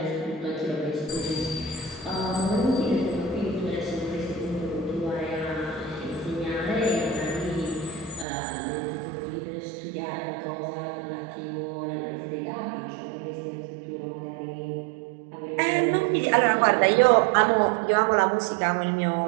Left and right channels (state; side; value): drops out; left; at 8.2 s